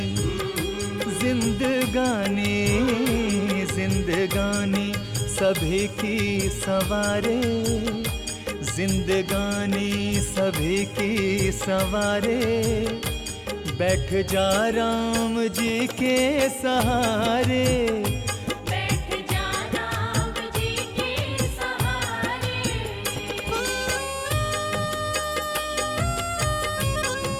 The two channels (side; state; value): both; identical; correlation 1.00